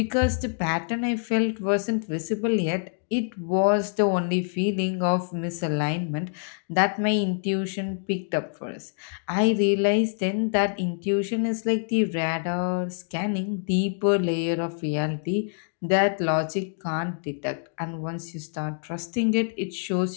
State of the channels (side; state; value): right; silent; digital silence